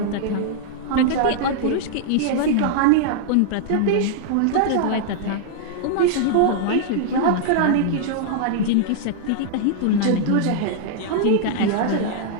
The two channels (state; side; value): different; both; correlation -0.01